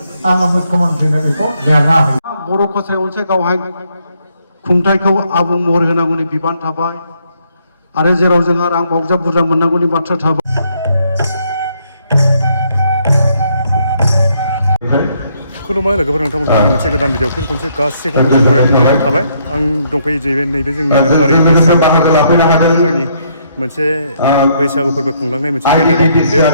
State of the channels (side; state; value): both; inverted; correlation -0.71